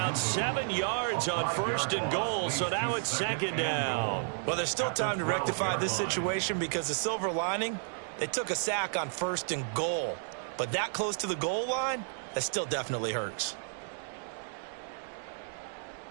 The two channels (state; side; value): silent; left; 56 dB below the other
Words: 7 yards on 1st and goal, so now it's 2nd down. Well, there's still time to rectify this situation because the silver lining, they took a sack on 1st and goal. But that close to the goal line, that still definitely hurts.